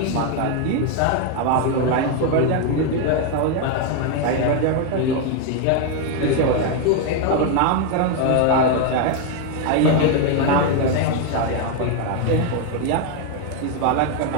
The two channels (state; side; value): different; both; correlation 0.01